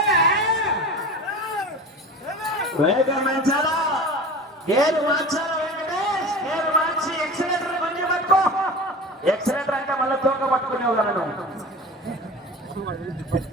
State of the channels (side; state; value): both; normal; correlation 0.35